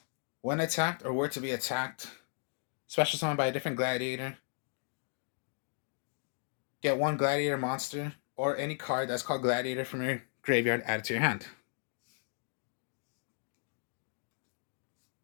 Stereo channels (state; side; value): silent; right; digital silence